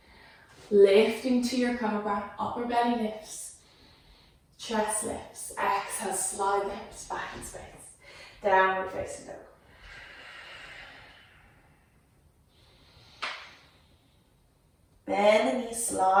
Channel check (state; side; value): identical; both; correlation 1.00